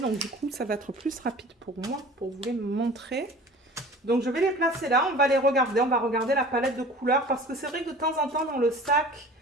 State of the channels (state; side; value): normal; both; correlation 0.43